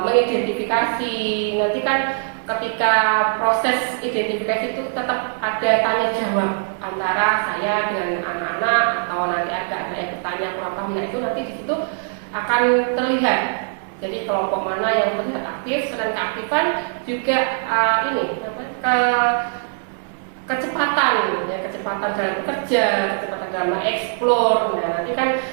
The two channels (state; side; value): silent; left; digital silence